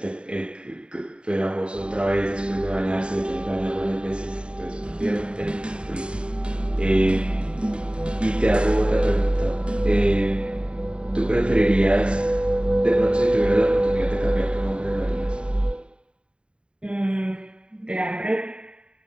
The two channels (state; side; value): late; left; 0.052 ms